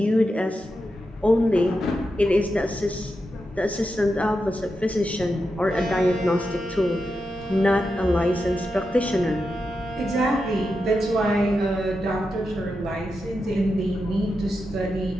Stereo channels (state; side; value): normal; both; correlation 0.88